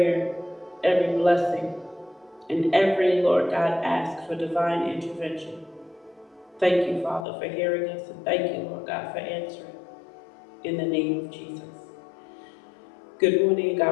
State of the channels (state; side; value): drops out; right; at 7.2 s